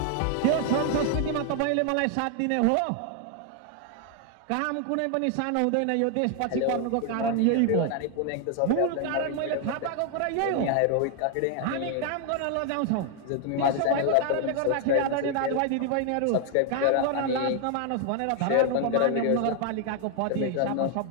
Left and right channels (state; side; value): different; both; correlation 0.00